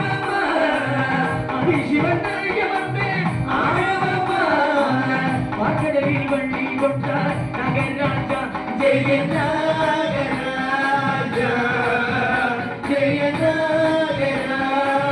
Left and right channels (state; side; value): identical; both; correlation 1.00